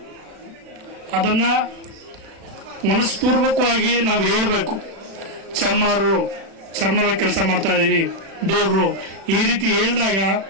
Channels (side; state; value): left; late; 36 ms